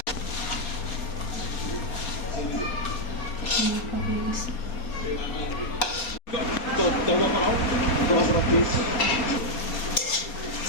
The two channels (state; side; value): late; right; 4.3 ms